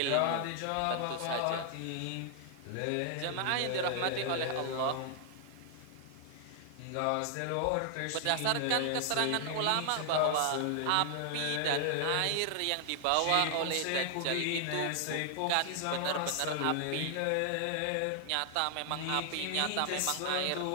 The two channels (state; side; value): different; both; correlation 0.00